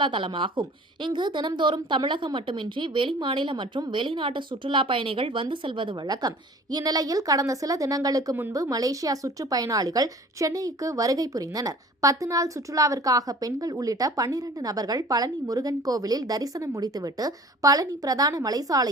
தலமாகும். இங்கு தினம்தோறும் தமிழகம் மட்டுமின்றி வெளிமாநில மற்றும் வெளிநாட்டு சுற்றுலா பயணிகள் வந்து செல்வது வழக்கம். இந்நிலையில் கடந்த சில தினங்களுக்கு முன்பு மலேசியா சுற்றுப்பயணிகள் சென்னைக்கு வருகை புரிந்தனர். 10 நாள் சுற்றுலாவிற்காக பெண்கள் உள்ளிட்ட 12 நபர்கள் பழனி முருகன் கோவிலில் தரிசனம் முடித்துவிட்டு பழனி பிரதான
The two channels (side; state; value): both; normal; correlation 0.46